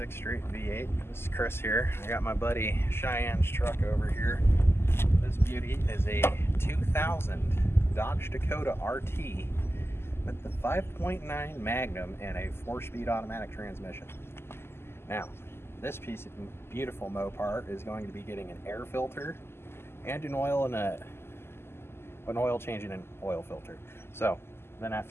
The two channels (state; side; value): late; right; 0.12 ms